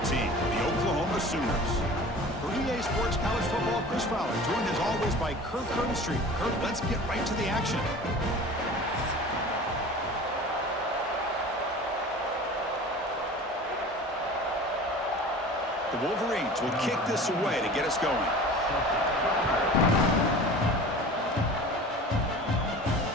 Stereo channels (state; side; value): normal; both; correlation 0.39